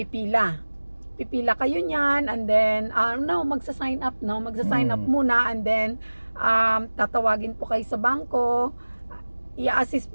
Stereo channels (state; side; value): inverted; both; correlation -1.00